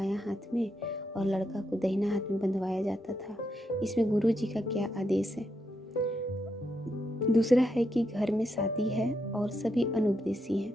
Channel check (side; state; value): both; normal; correlation 0.81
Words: हाथ में और लड़का को दाहिना हाथ में बंधवाया जाता था। इसमें गुरु जी का क्या आदेश है। दूसरा है कि घर में शादी है और सभी अनुपदेशी हैं,